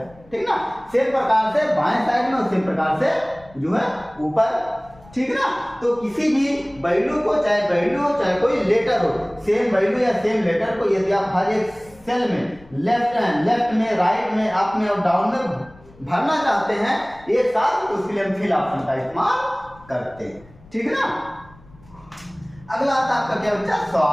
ठीक ना। सेम प्रकार से बाएं साइड में, उसी प्रकार से जो है ऊपर, ठीक ना। तो किसी भी वैल्यू को, चाहे वैल्यू हो चाहे कोई लेटर हो, सेम वैल्यू या सेम लेटर को यदि आप हर एक सेल में लेफ्ट में, राइट में, अप में और डाउन में भरना चाहते हैं एक साथ, तो उसके लिए हम फिल ऑप्शन का इस्तेमाल करते हैं, ठीक ना। अगला आता है आपका क्या बच्चा,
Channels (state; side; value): noise; left; rumble, 25 dB below the sound